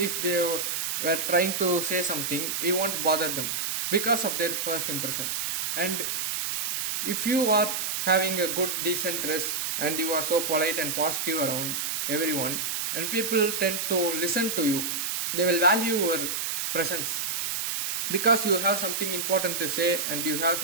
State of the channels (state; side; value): noise; right; hiss, 1 dB below the sound